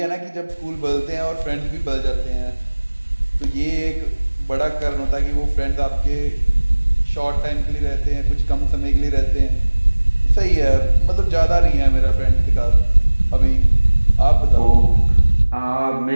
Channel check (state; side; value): inverted; both; correlation -1.00